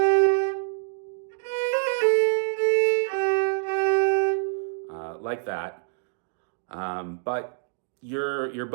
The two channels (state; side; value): silent; left; digital silence